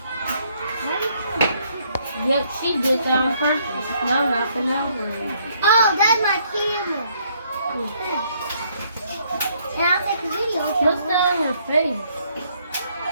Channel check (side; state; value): both; inverted; correlation -0.68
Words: Yep, she did that on purpose. Now nothing over it. Oh, that's my camera. And I'll take a video. What's that on her face?